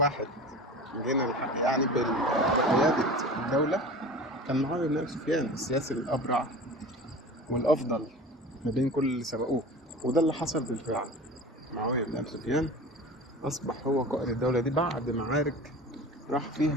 جينا الحق يعني بقياده الدوله كان معاويه بن ابي سفيان، السياسي الابرع والافضل ما بين كل اللي سبقوه. وده اللي حصل بالفعل. معاويه بن ابي سفيان اصبح هو قائد الدوله دي بعد معارك راح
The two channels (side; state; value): both; normal; correlation 0.36